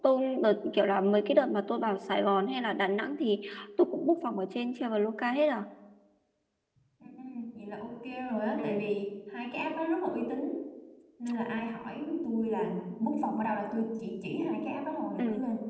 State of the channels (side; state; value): both; identical; correlation 1.00